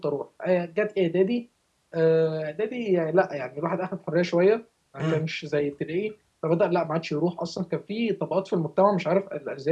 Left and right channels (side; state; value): both; identical; correlation 1.00